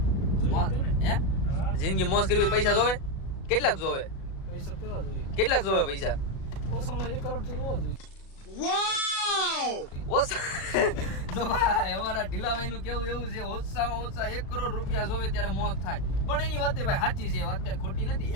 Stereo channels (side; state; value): right; late; 37 ms